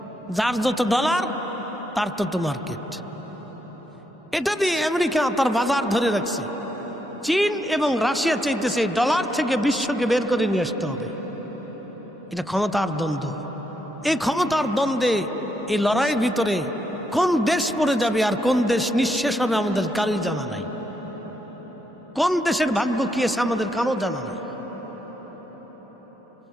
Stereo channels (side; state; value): both; normal; correlation 0.79